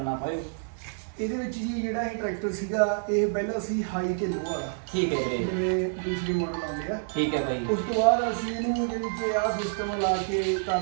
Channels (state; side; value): silent; left; digital silence